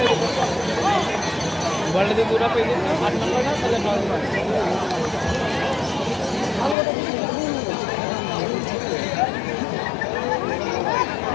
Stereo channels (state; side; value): drops out; right; at 6.8 s